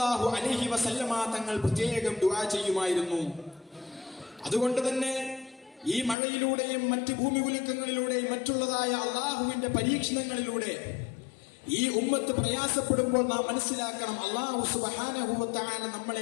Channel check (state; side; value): drops out; right; at 6.2 s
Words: അലൈഹി വസല്ലമ തങ്ങൾ പ്രത്യേകം ദുആ ചെയ്യുമായിരുന്നു. അതുകൊണ്ട് തന്നെ ഈ മഴയിലൂടെയും മറ്റ് ഭൂമി കുലുക്കങ്ങളിലൂടെയും മറ്റുള്ളതായ അള്ളാഹുവിന്റെ പരീക്ഷണങ്ങളിലൂടെ ഈ ഉമ്മത്ത് പ്രയാസപ്പെടുമ്പോൾ നാം മനസ്സിലാക്കണം, അല്ലാഹു സുബ്ഹാനഹു വ തആല